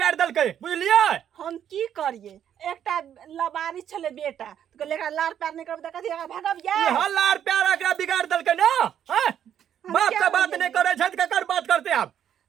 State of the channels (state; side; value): quieter; left; 9.6 dB